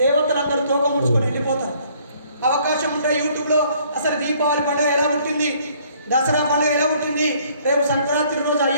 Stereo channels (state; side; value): inverted; both; correlation -0.61